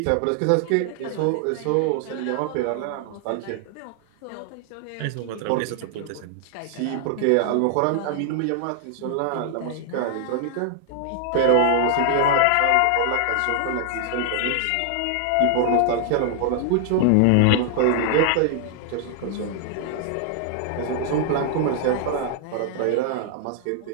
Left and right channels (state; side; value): different; both; correlation -0.01